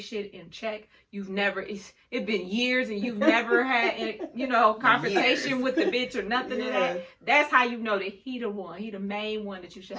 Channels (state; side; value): identical; both; correlation 1.00